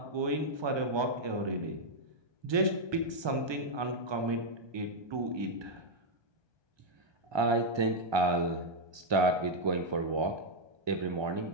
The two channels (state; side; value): late; left; 1.2 ms